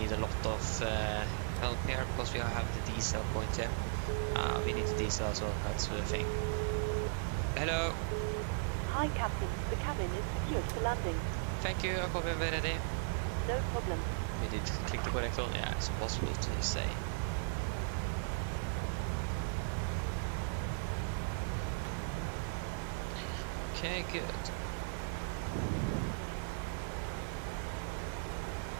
a lot of help here because we have the diesel point here. We need the diesel as well, that's the thing. Hello. Hi, Captain. The cabin is secured for landing. Thank you, I'm coming ready. No problem. We did click the correct one. Yeah, it's impossible to say. Okay, good.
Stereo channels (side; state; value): left; silent; 53 dB below the other